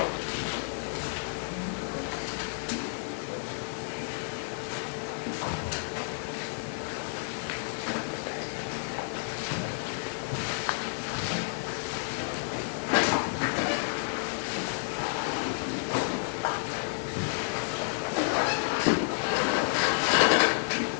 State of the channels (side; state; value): right; silent; 57 dB below the other